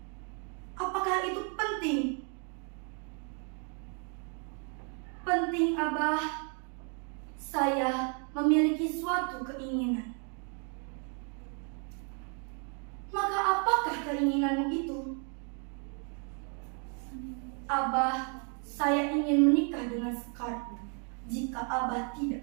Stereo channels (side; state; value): left; quieter; 39.8 dB